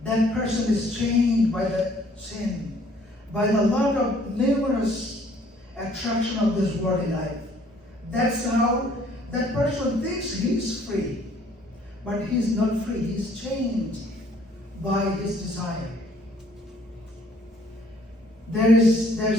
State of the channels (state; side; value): normal; both; correlation 0.61